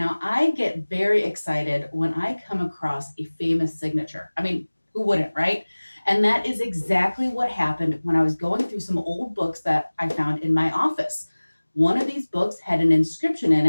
I get very excited when I come across a famous signature. I mean, who wouldn't, right? And that is exactly what happened when I was going through some old books that I found in my office. One of these books had an inscription in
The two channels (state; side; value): inverted; both; correlation -1.00